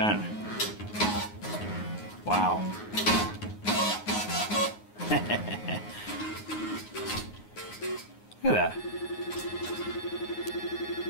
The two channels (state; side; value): late; right; 9.6 ms